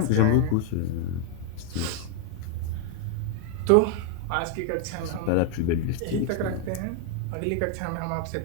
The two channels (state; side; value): different; both; correlation 0.01